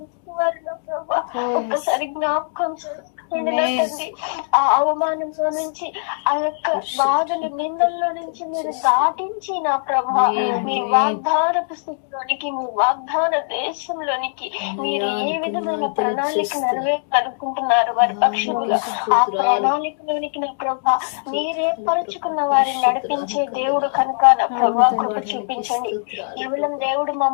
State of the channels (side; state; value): right; silent; digital silence